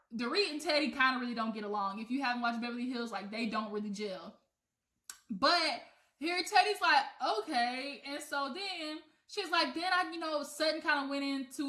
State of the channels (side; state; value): both; identical; correlation 1.00